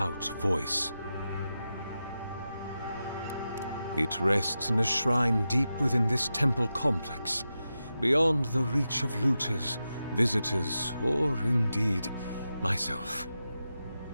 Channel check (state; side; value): inverted; both; correlation -0.90